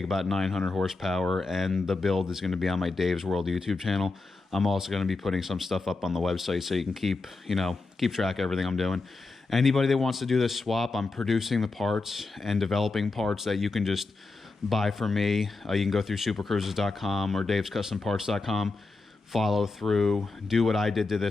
about 900 horsepower, and the build is going to be on my Dave's World YouTube channel. I'm also going to be putting some stuff up on the website so you can keep track of everything I'm doing. Anybody that wants to do this swap, I'm producing the parts and developing parts that you can just buy from me. You can go through supercruises.com or davescustomparts.com, follow through, do what I did to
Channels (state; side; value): quieter; right; 3.7 dB